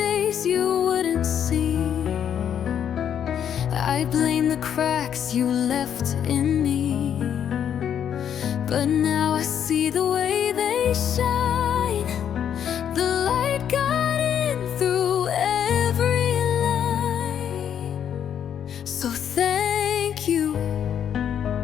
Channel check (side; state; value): right; quieter; 9.0 dB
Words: you wouldn't see. I blamed the cracks you left in me. But now I see the way they shine. The light got in through every line. So thank you